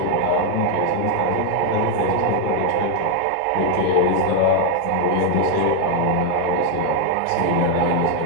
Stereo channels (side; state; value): both; different; correlation 0.00